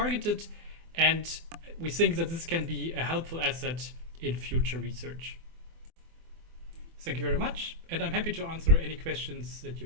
and we think that this can be a helpful asset in future research. Thank you very much, and I'm happy to answer any questions that you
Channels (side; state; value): left; late; 24 ms